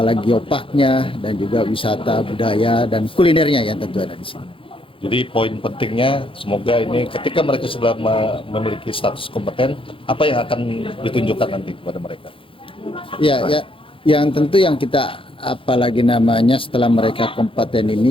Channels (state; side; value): late; right; 0.26 ms